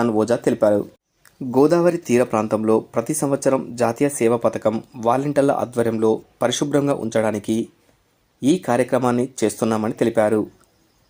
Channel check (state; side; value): identical; both; correlation 1.00